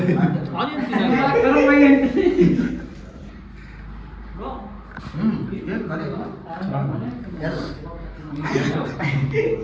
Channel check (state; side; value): identical; both; correlation 1.00